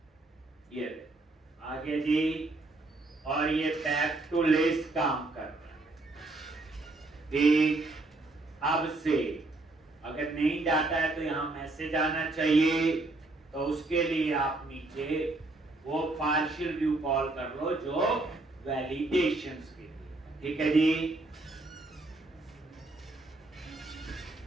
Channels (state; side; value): quieter; left; 3.0 dB